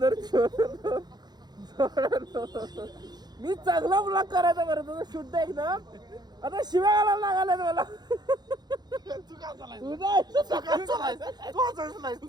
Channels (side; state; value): left; late; 0.20 ms